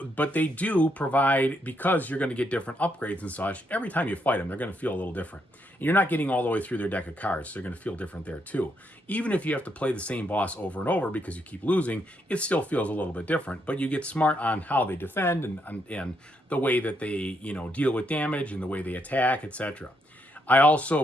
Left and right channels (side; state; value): both; normal; correlation 0.77